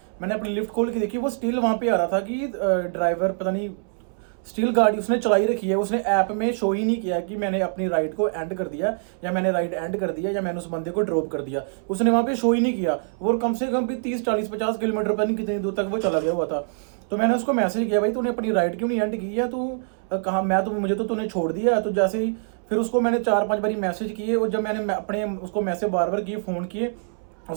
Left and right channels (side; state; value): left; silent; 62 dB below the other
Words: मैंने अपनी लिफ्ट खोल के देखी वो स्टिल वहाँ पे आ रहा था कि ड्राइवर पता नहीं स्टिल गाड़ी उसने चलाई रखी है. उसने ऐप में शो ही नहीं किया कि मैंने अपनी राइड को एंड कर दिया या मैंने राइड एंड कर दिया या मैंने उस बंदे को ड्रॉप कर दिया. उसने वहाँ पे शो ही नहीं किया. और कम से कम भी 30-40-50 किलोमीटर पता नहीं कितनी दूर तक वो चला गया हुआ था. तो मैंने उसको मैसेज किया भाई तूने अपनी राइड क्यों नहीं एंड की है. तू कहाँ मुझे तो तूने छोड़ दिया. तो जैसे ही फिर उसको मैंने 4-5 बारी मैसेज किए और जब मैंने अपने उसको मैसेज बार किए फ़ोन किए